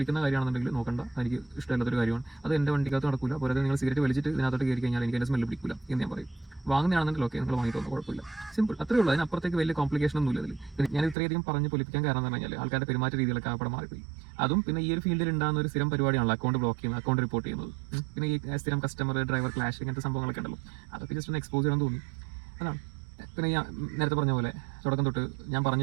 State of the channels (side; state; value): left; drops out; at 11.2 s